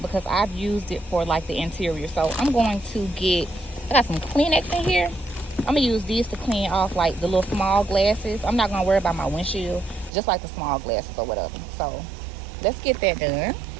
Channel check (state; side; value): drops out; left; at 10.1 s